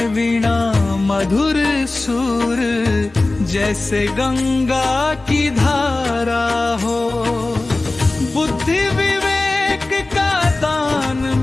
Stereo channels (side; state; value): right; quieter; 3.1 dB